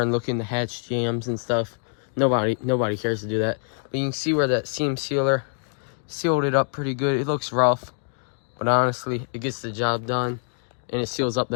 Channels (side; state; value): right; silent; 61 dB below the other